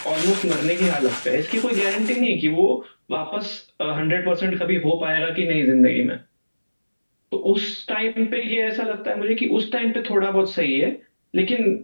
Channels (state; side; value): inverted; both; correlation -1.00